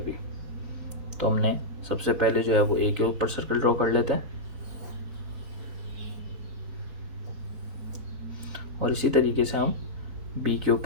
तो हमने सबसे पहले जो है वो ए के ऊपर सर्कल ड्रॉ कर लेते हैं और इसी तरीके से हम बी के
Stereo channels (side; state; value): left; late; 4.0 ms